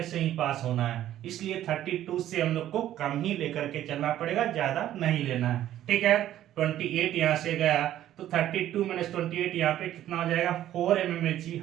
से ही पास होना है, इसलिए 32 से हम लोग को कम ही लेकर के चलना पड़ेगा, ज्यादा नहीं लेना है। ठीक है, 28 यहाँ से गया तो 32 - 28 यहाँ पे कितना हो जाएगा, 4 mmHg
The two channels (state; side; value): quieter; left; 12.4 dB